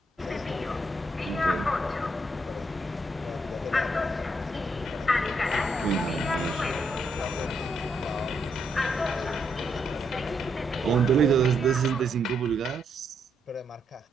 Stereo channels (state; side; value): normal; both; correlation 0.77